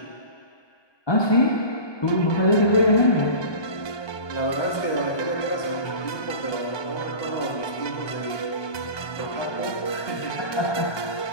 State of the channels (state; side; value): late; right; 1.2 ms